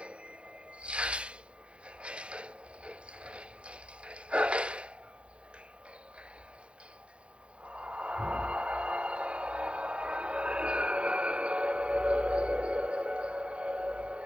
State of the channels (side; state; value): left; late; 0.058 ms